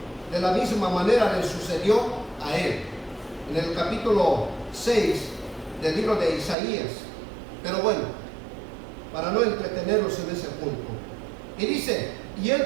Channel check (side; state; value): left; drops out; at 6.6 s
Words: de la misma manera le sucedió a él, en el capítulo 6 del libro de Isaías. Pero bueno, para no entretenerlos en ese punto, y dice: y